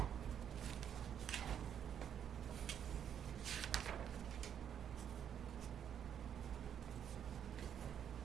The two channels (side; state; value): left; quieter; 8.8 dB